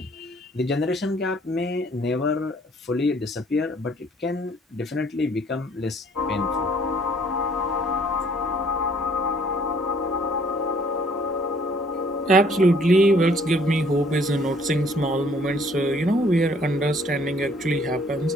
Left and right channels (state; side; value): normal; both; correlation 0.60